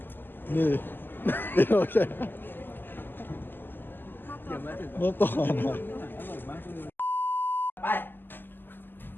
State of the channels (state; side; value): late; right; 0.094 ms